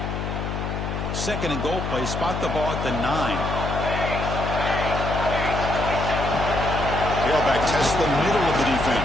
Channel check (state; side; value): noise; left; hum, 3 dB below the sound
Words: Second and goal play. Spot the ball at the 9. Tailback tests the middle of the